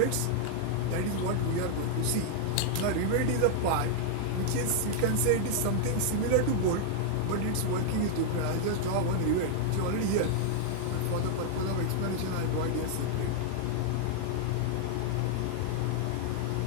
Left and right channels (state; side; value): different; both; correlation 0.00